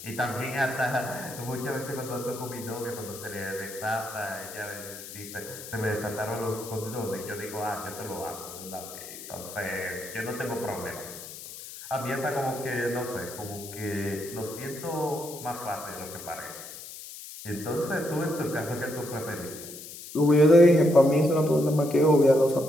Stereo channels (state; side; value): noise; left; hiss, 13 dB below the sound